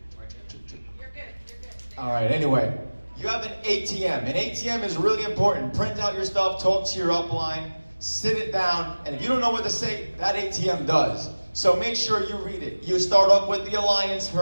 All right, anyway, you have an ATM. An ATM is really important. Print out your stuff, talk to your upline, sit it down, and if you don't know what to say, that ATM does. So make sure you read it. You start off with the alliance,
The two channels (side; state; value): both; inverted; correlation -1.00